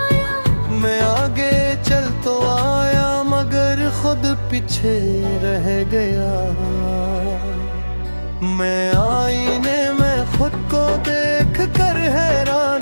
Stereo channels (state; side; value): inverted; both; correlation -1.00